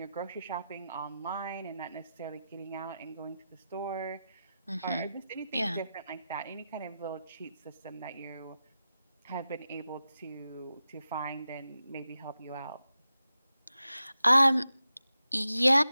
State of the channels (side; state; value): both; inverted; correlation -0.91